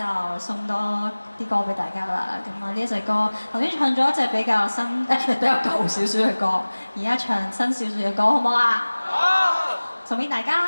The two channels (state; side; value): inverted; both; correlation -1.00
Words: 送多啲歌俾大家啦。咁啊，呢一隻歌頭先唱咗一隻比較新比較舊少少嘅歌，而家唱新少少嘅歌，好唔好啊？好！送俾大